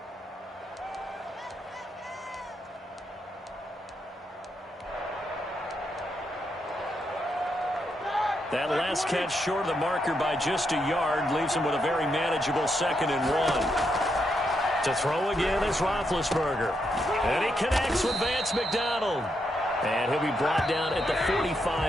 That last catch short of the marker by just a yard leaves him with a very manageable 2nd and 1. To throw again is Roethlisberger. And he connects with Vance McDonald. And he'll be brought down at the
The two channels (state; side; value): normal; both; correlation 0.81